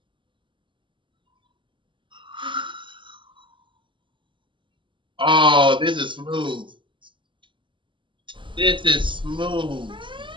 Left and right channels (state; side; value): late; left; 0.24 ms